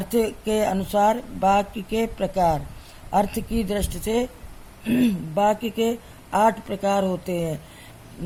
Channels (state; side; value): identical; both; correlation 1.00